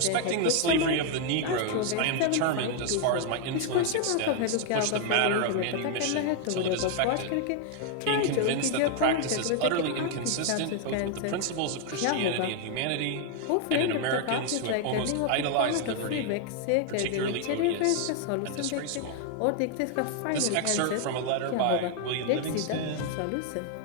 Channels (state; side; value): different; both; correlation 0.00